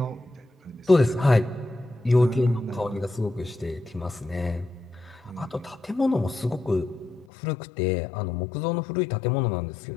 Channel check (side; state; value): right; drops out; at 7.2 s